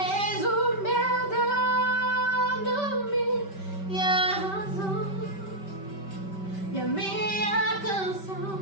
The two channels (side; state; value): right; late; 5.2 ms